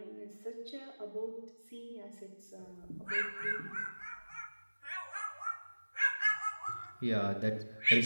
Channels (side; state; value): both; inverted; correlation -1.00